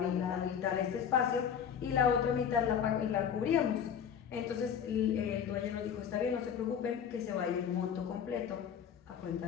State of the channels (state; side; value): quieter; right; 8.1 dB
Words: este espacio, y la otra mitad la cubríamos. Entonces el dueño nos dijo, está bien, no se preocupen, que se vaya el monto completo a cuenta